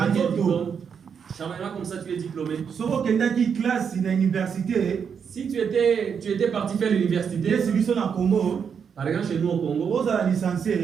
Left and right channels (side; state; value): left; quieter; 6.9 dB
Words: quel diplôme? Comme ça, tu es diplômé. Si tu étais parti faire l'université, par exemple chez nous au Congo,